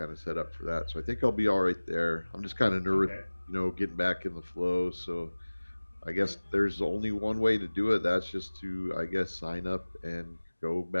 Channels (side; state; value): both; inverted; correlation -1.00